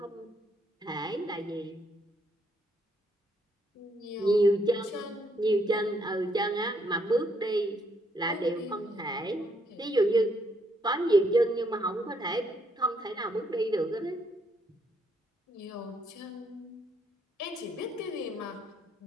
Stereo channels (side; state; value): both; normal; correlation 0.72